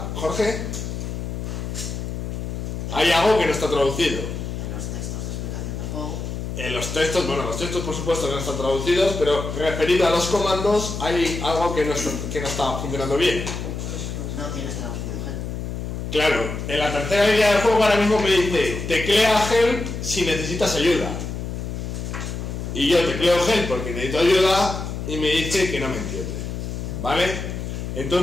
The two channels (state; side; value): noise; left; hum, 5 dB below the sound